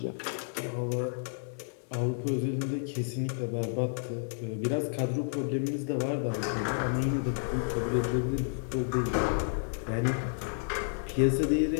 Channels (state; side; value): silent; right; digital silence